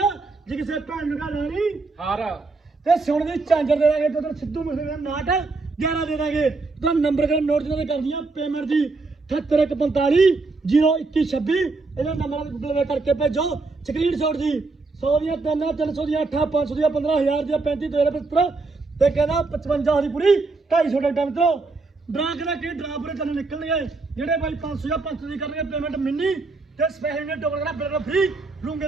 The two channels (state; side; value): quieter; left; 3.8 dB